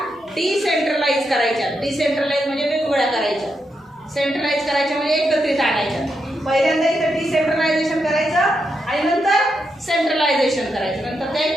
डिसेंट्रलाइज करायच्या. डिसेंट्रलाइज म्हणजे वेगवेगळ्या करायच्या. सेंट्रलाइज करायच्या म्हणजे एकत्रित आणायच्या. पहिल्यांदा इथं डिसेंट्रलायझेशन करायचं आणि नंतर सेंट्रलायझेशन करायचं, नंतर त्या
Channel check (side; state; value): both; normal; correlation 0.83